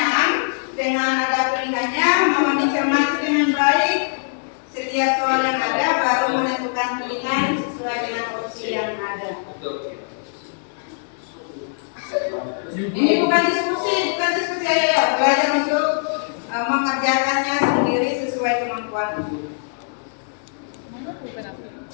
dengan ada pilihannya, mohon dicermati dengan baik setiap soal yang ada baru menentukan pilihan sesuai dengan opsi yang ada. Ini bukan diskusi ya, belajar untuk mengerjakannya sendiri sesuai kemampuan.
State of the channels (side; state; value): right; silent; digital silence